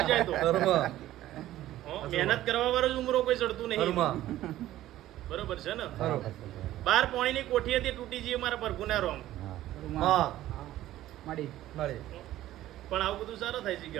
જાય તો મહેનત કરવા વાળો જ ઉમરો કોઈ ચડતું નહીં બરોબર છે ને 12 પોણીની કોઠી હતી તૂટી જઈ મારા પ્રભુના રોમ પણ આવું બધું સારું થાય છે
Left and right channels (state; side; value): quieter; left; 14.3 dB